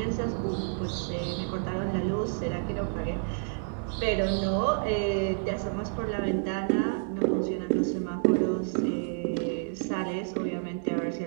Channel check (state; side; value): silent; left; 56 dB below the other